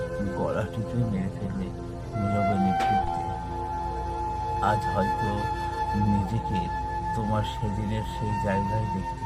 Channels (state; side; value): identical; both; correlation 1.00